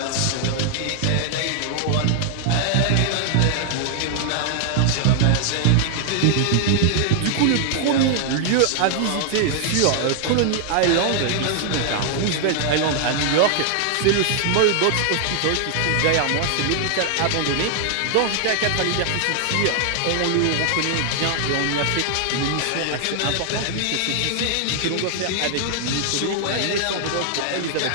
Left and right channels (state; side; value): different; both; correlation 0.00